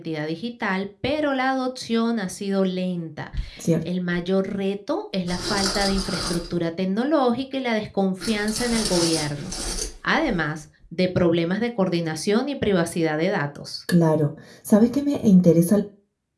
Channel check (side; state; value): both; identical; correlation 1.00